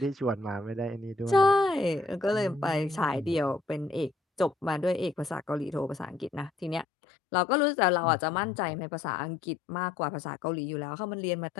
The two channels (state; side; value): drops out; right; at 6.9 s